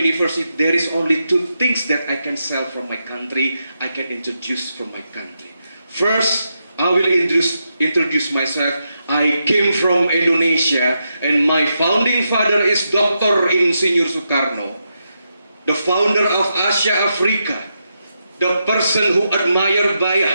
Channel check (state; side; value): inverted; both; correlation -0.84